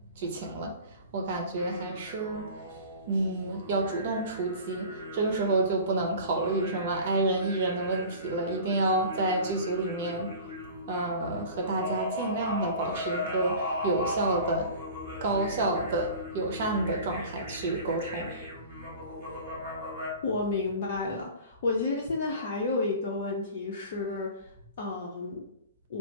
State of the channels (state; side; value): inverted; both; correlation -0.39